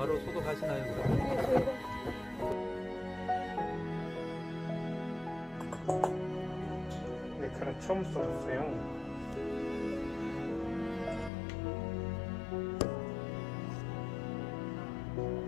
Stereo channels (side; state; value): right; drops out; at 11.3 s